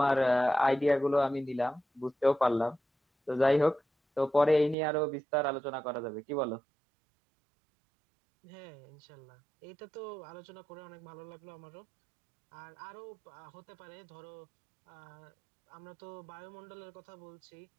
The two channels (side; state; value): left; drops out; at 4.8 s